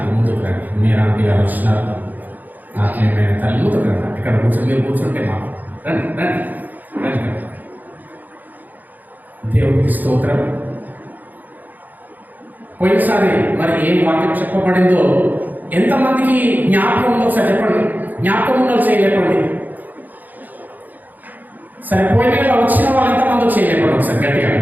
మీరు ఆంటీ గారు వచ్చినారు, ఆత్మీయమైన తల్లి ముందుకు రండి. ఇక్కడ కూర్చొని మీరు కూర్చుంటే మాకు రండి. దేవుడికి స్తోత్రం. పోయినసారి మరి ఏం వాక్యం చెప్పబడిందో ఎంతమందికి జ్ఞాపకం ఉందో ఒకసారి చెప్పండి. జ్ఞాపకం ఉందో చేయలేపండి. సరే, పోయిన నెల వచ్చిన వాళ్ళు ఎంతమంది చేయలేపండి. ఒకసారి గట్టిగా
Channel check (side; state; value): left; late; 0.084 ms